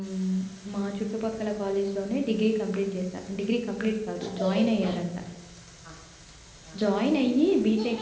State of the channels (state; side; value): identical; both; correlation 1.00